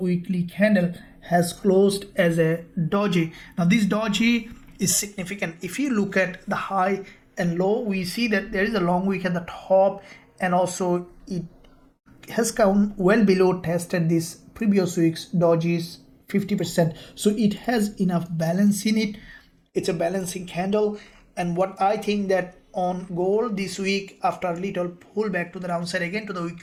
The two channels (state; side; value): identical; both; correlation 1.00